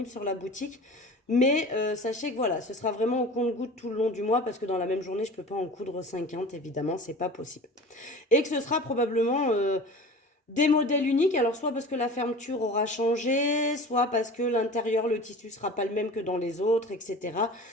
sur la boutique. Mais sachez que voilà, ce sera vraiment au compte-gouttes tout le long du mois parce que dans la même journée, je ne peux pas en coudre 50, évidemment, c'est pas possible. Et que ce sera probablement des modèles uniques, alors soit parce que la fermeture aura changé, soit parce que l'intérieur, le tissu sera pas le même que dans les autres, etc.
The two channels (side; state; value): both; normal; correlation 0.38